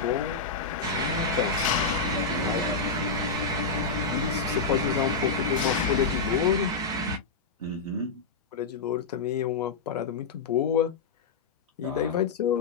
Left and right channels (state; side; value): quieter; right; 4.4 dB